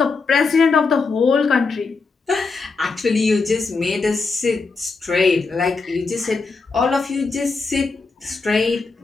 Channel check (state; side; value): quieter; right; 4.3 dB